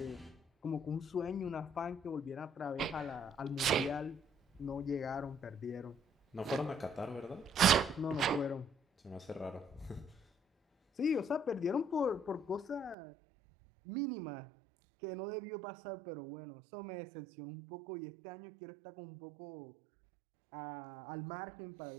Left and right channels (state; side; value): drops out; left; at 13.0 s